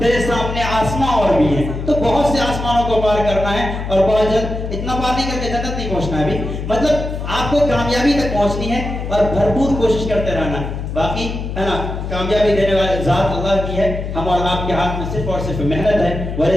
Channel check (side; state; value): left; noise; hum, 5 dB below the sound